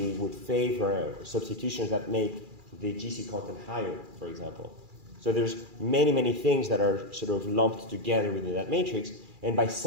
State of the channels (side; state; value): left; late; 2.4 ms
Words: it would favor substitutions that make the GC content higher, for example. So there's many, many things that are lumped together within that matrix, and by